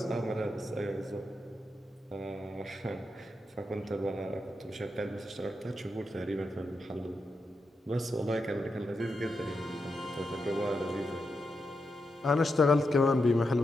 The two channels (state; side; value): normal; both; correlation 0.86